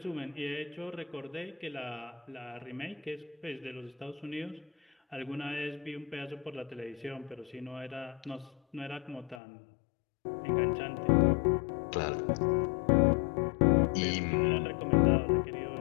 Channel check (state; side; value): drops out; right; at 9.4 s